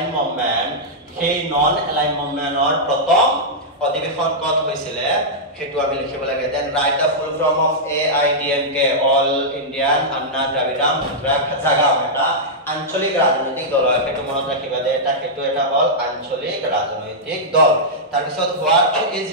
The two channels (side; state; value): both; normal; correlation -0.09